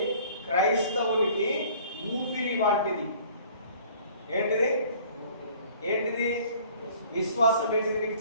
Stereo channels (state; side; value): inverted; both; correlation -0.52